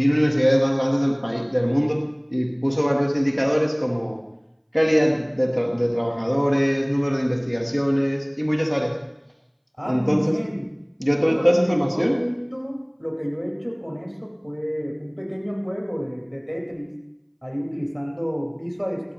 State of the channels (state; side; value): identical; both; correlation 1.00